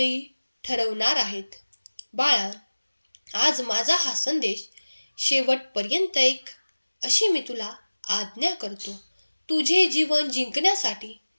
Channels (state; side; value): inverted; both; correlation -1.00